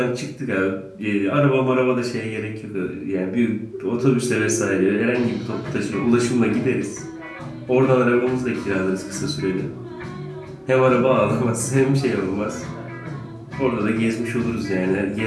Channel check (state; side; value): identical; both; correlation 1.00